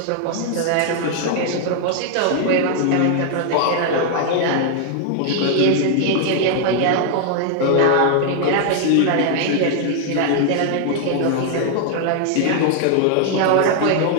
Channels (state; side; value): different; both; correlation 0.00